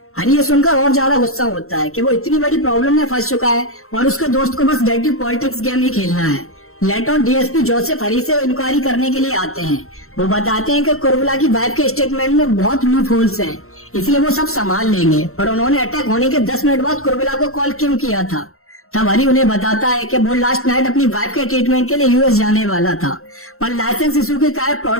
हरी ये सुनकर और ज्यादा गुस्सा होता है कि वो इतनी बड़ी प्रॉब्लम में फंस चुका है और उसके दोस्त को बस डर्टी पॉलिटिक्स गेम ही खेलना है। लेटर डीएसपी जोसेफ हरी से इंक्वायरी करने के लिए आते हैं। वो बताते हैं कि कुर्बिला की वाइफ के स्टेटमेंट में बहुत लूप होल्स हैं, इसलिए वो सब संभाल लेंगे, पर उन्होंने अटैक होने के 10 मिनट बाद कुर्बिला को कॉल क्यों किया था। तब हरी उन्हें बताता है कि वो लास्ट नाइट अपनी वाइफ के ट्रीटमेंट के लिए यूएस जाने वाला था, पर लाइसेंस इशू के कारण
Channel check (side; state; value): right; late; 0.63 ms